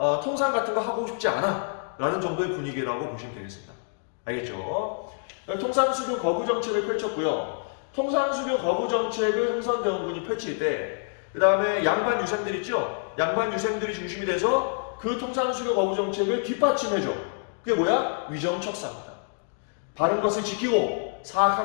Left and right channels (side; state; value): right; silent; digital silence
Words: 통상 같은 거 하고 싶지 않아. 라는 정도의 분위기라고 보시면 되겠습니다. 알겠죠? 통상수교 거부 정책을 펼쳤고요. 통상수교 거부 정책을 흥선대원군이 펼칠 때, 그 다음에 양반 유생들 있죠? 양반 유생들이 중심이 돼서 그 통상수교 거부 정책을 뒷받침해줘. 그게 뭐야? 위정척사입니다. 바른 것을 지키고